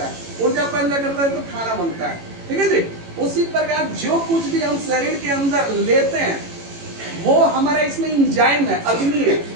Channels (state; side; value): late; left; 18 ms